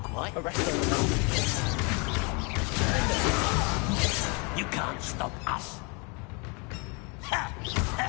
quite. You can't stop us.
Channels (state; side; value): quieter; right; 32.2 dB